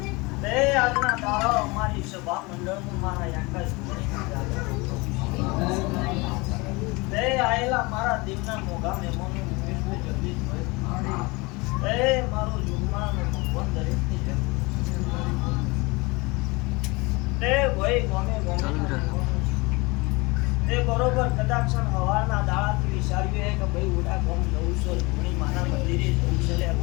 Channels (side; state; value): right; quieter; 25.2 dB